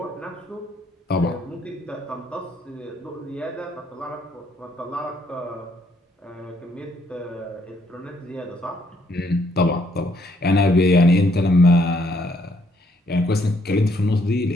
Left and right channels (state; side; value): normal; both; correlation 0.69